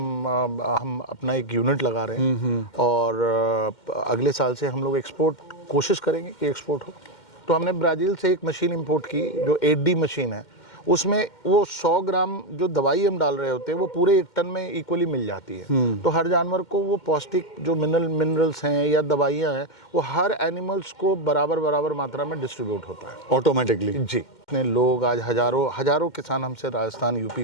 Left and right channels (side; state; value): right; late; 2.1 ms